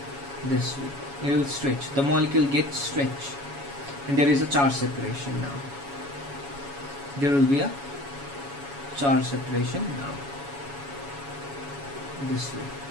this way. It will stretch. The molecule gets stretched, and there is a charge separation now. There will be a charge separation now. This way.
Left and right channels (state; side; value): late; left; 7.2 ms